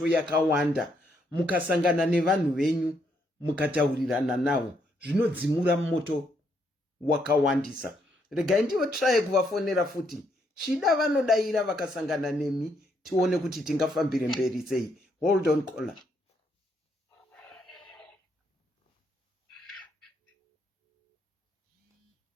yakawanda mukasangana nevanhu venyu mukataurirana navo zvinodzimura moto wakawandisa regai ndiwo try kuvafonera futi chida vanodaira vakasangana nemi tione kuti tingafambire mberi sei hold on caller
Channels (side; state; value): both; normal; correlation 0.75